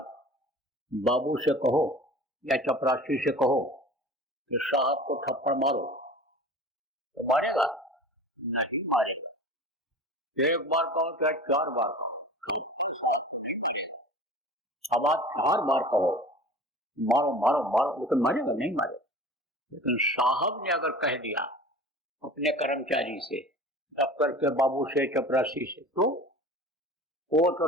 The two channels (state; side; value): normal; both; correlation 0.39